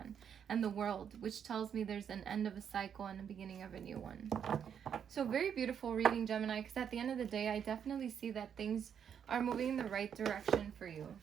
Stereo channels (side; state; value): left; quieter; 8.1 dB